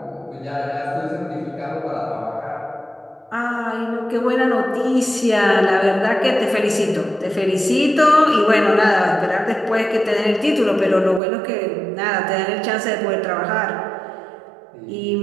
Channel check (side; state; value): left; drops out; at 11.2 s